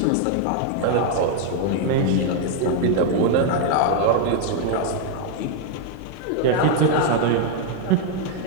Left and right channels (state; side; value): different; both; correlation 0.00